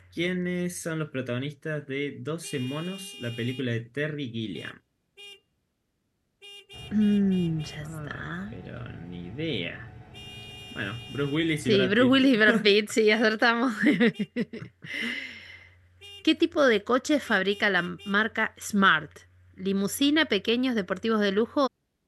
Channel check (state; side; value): identical; both; correlation 1.00